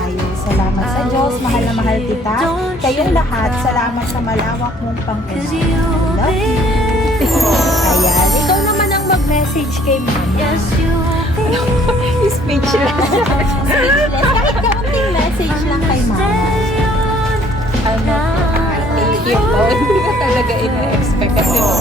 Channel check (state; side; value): normal; both; correlation 0.59